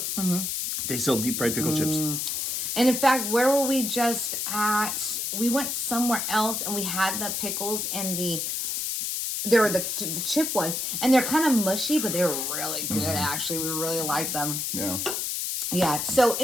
They sell deep fried pickle chips. And in fact, where were we just at? We went somewhere else, and we had the pickles and there were the chip ones, and they're kind of mushy, but they were really good. Actually, we really liked them. Yeah. Yeah. So,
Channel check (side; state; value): left; noise; hiss, 1 dB below the sound